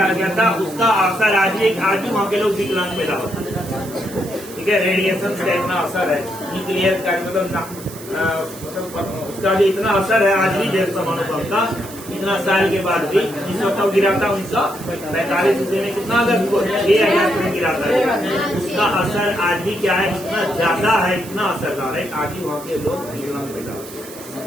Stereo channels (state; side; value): noise; right; hiss, 16 dB below the sound